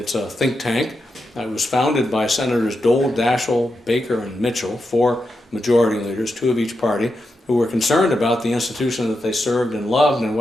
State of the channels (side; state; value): both; normal; correlation 0.87